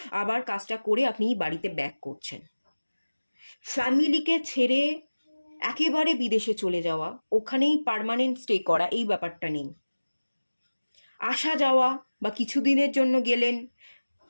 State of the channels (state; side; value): inverted; both; correlation -1.00